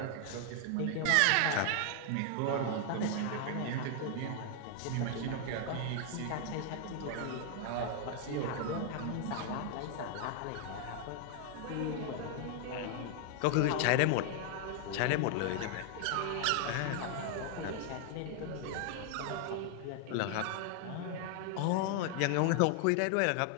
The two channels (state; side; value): different; both; correlation 0.00